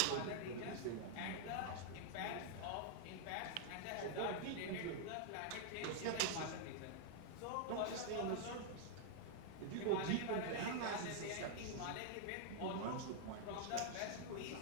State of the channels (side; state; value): both; different; correlation -0.01